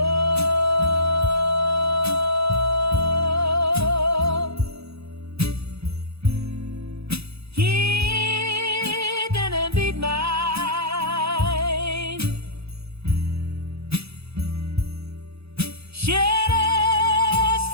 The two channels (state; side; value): late; left; 0.78 ms